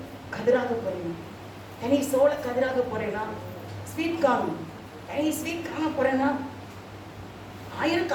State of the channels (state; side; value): identical; both; correlation 1.00